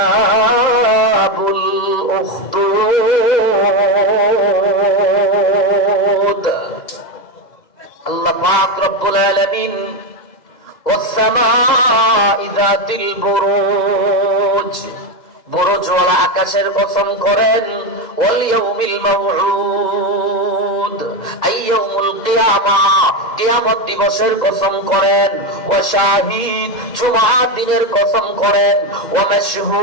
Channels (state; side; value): late; right; 2.0 ms